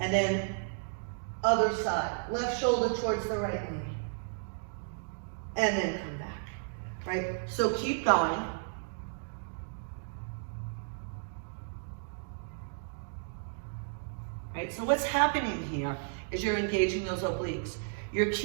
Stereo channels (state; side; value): silent; left; digital silence